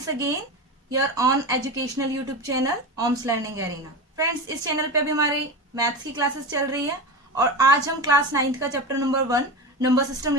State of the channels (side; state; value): both; normal; correlation 0.23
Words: again your on educational YouTube channel OMS Learning Arena। Friends, इस channel पे अभी हमारी मैथ्स की क्लासेस चल रही है और आज हम क्लास 9th का चैप्टर नंबर 1 नंबर सिस्टम